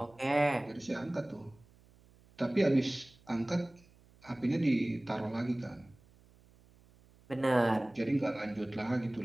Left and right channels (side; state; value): right; noise; hum, 28 dB below the sound